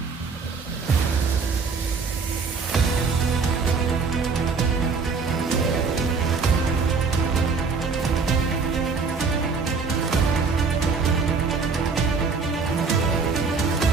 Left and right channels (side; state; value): left; quieter; 4.8 dB